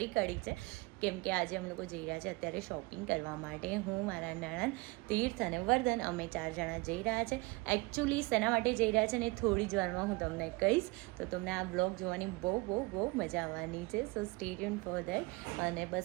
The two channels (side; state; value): left; quieter; 25.1 dB